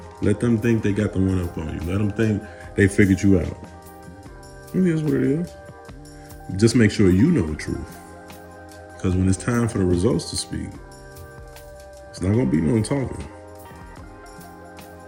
Let them think they got the one up on you. Let them think they figured you out. It is what it is. Just make sure you know the truth. Because when it's time for the results to speak, it's not going to be no talking.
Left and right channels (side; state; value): both; identical; correlation 1.00